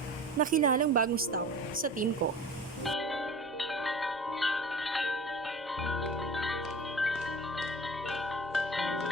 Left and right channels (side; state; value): both; normal; correlation 0.39